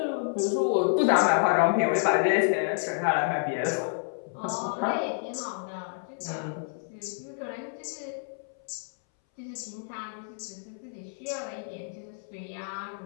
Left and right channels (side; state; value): right; silent; 59 dB below the other